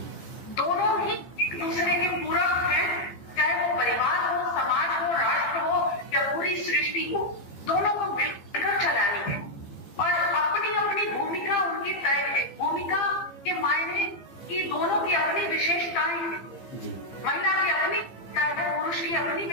दोनों ही एक दूसरे के पूरक हैं। चाहे वो परिवार हो, समाज हो, राष्ट्र हो या पूरी सृष्टि हो, दोनों को मिलकर चलानी है और अपनी अपनी भूमिका उनकी तय है। भूमिका के मायने कि दोनों की अपनी विशेषताएं हैं, महिला की अपनी पुरुष की अपनी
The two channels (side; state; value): right; late; 15 ms